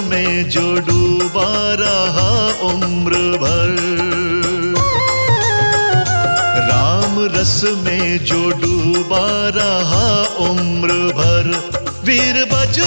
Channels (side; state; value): both; inverted; correlation -1.00